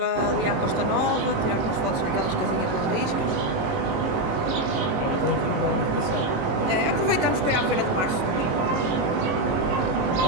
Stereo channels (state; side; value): late; left; 18 ms